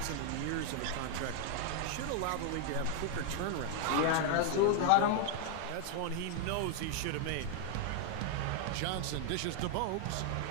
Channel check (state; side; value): different; both; correlation 0.00